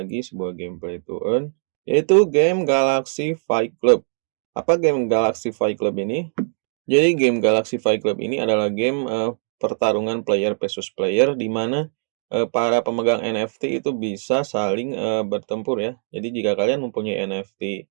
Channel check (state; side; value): silent; left; 64 dB below the other